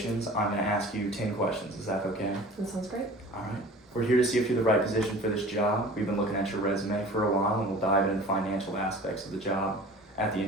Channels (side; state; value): both; normal; correlation 0.43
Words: I'm going to ask you 10 questions. Is that okay? That sounds great. All right. We're here to see if you're the right position for this job. We've been looking at your resume for a while, and we'll dive into financial aspects of the job at the